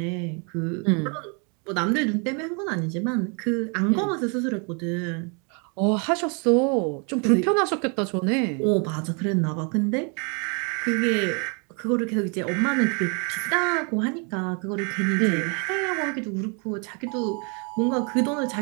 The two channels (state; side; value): quieter; left; 35.8 dB